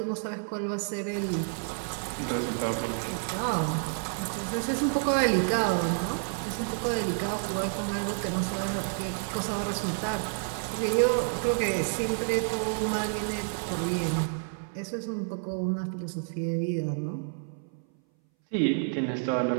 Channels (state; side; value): silent; left; 58 dB below the other